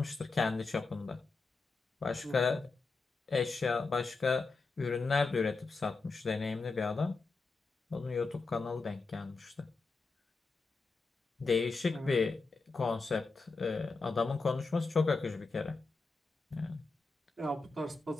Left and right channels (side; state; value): right; quieter; 4.0 dB